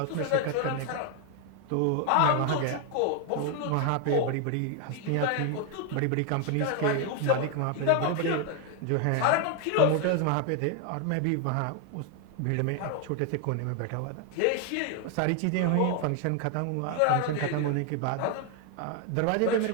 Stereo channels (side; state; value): both; different; correlation 0.01